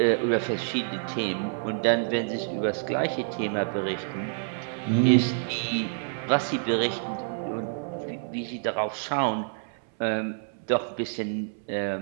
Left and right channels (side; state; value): left; silent; 60 dB below the other